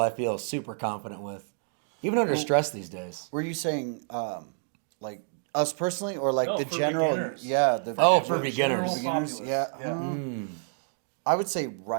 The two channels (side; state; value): left; silent; digital silence